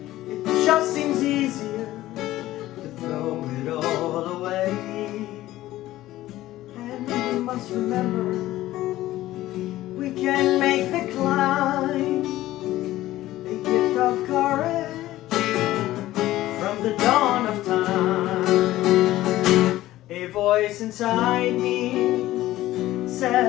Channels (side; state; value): right; quieter; 15.5 dB